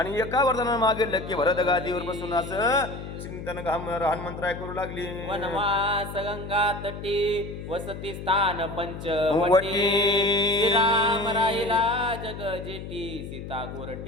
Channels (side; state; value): left; noise; hum, 9 dB below the sound